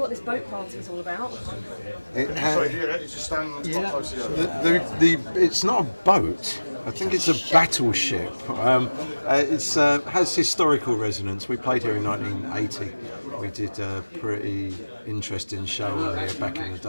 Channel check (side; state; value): both; inverted; correlation -1.00